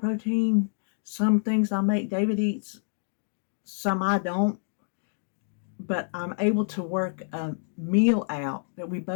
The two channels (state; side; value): silent; right; digital silence